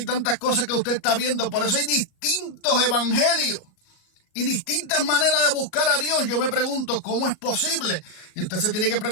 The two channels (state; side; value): late; right; 38 ms